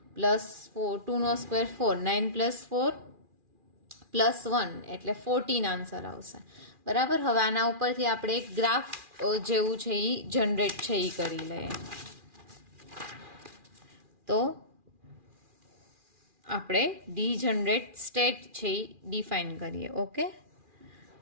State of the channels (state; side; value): late; left; 2.4 ms